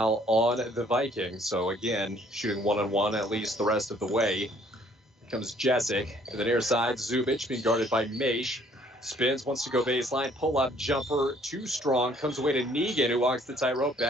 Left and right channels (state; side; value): normal; both; correlation 0.61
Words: on the Vikings. So again, shooting one-on-one at least the rest of the way. Here comes Jessic to the near side. Zubich being guarded by Maish. Spins, wants to go baseline. Pull-up jumper, too strong. Comes away to Negan, who walks the tightrope